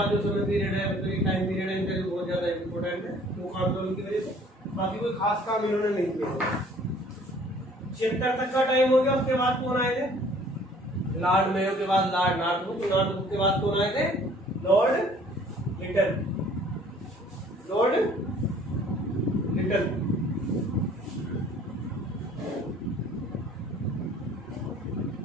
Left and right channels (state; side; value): normal; both; correlation 0.55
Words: जो समय पीरियड है, मतलब टाइम पीरियड है, इनका बहुत ज्यादा इम्पोर्टेंट है कूका आंदोलन की वजह से। बाकी कोई खास काम इन्होंने नहीं किया। 76 तक का टाइम हो गया। उसके बाद कौन आए थे? लॉर्ड मेयो के बाद लॉर्ड नॉर्थब्रुक, नॉर्थब्रुक के बाद कौन आए थे? Lord Liton, Lord Liton.